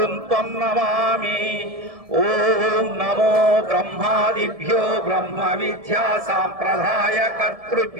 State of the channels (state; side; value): late; left; 1.7 ms